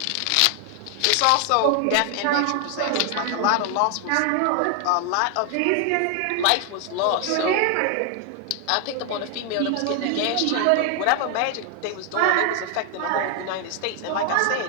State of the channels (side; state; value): both; different; correlation 0.00